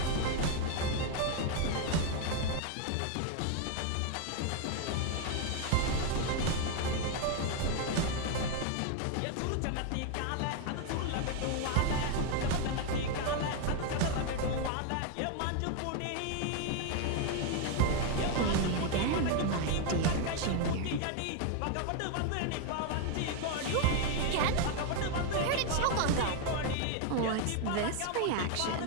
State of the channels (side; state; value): both; different; correlation 0.01